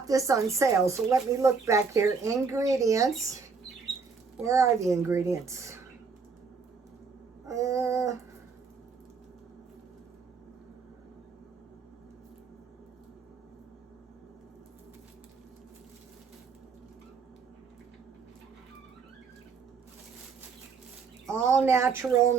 this on sale, so let me look back here. Ingredients. Where are the ingredients? All natural,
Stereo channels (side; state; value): left; quieter; 5.1 dB